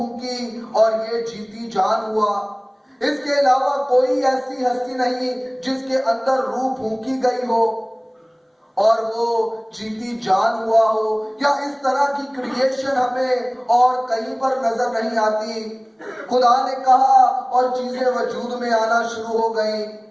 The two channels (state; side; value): identical; both; correlation 1.00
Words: اور یہ جیتی جان ہوا۔ اس کے علاوہ کوئی ایسی ہستی نہیں جس کے اندر روح پھونکی گئی ہو اور وہ جیتی جان ہوا ہو، یا اس طرح کی کریشن ہمیں اور کہیں پر نظر نہیں آتی۔ خدا نے کہا اور چیزیں وجود میں آنا شروع ہو گئیں،